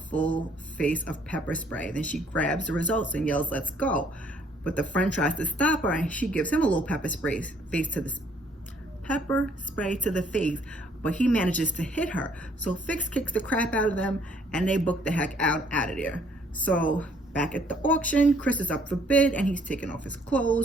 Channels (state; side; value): normal; both; correlation 0.63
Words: full face of pepper spray. Then she grabs the results and yells, let's go. But the friend tries to stop her, and she gives him a little pepper spray to the face, but he manages to hit her. So Fiks kicks the crap out of them, and they book the heck out of there. So back at the auction, Chris is up for bid, and he's taking off his